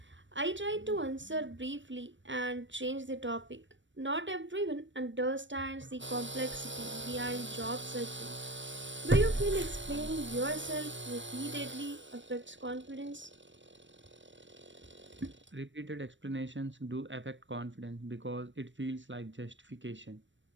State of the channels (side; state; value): left; late; 0.54 ms